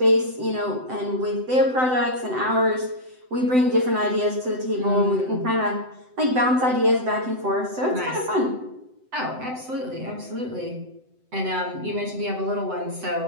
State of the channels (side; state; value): left; late; 7.8 ms